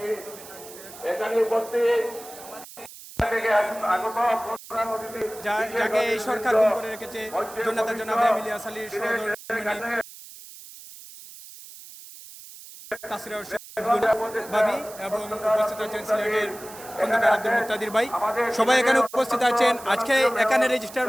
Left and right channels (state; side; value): noise; right; hiss, 17 dB below the sound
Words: এখানে উপস্থিত যাকে এই সরকার গুম করে রেখেছে জনতা জনাব এমিলিয়া সালির সহধর্মিণী তাসরিয়া ভাবি এবং উপস্থিত আছেন সিলেটের খন্দকার আব্দুল মুক্তাদির ভাই, সবাই এখানে উপস্থিত আছেন। আজকে এখানে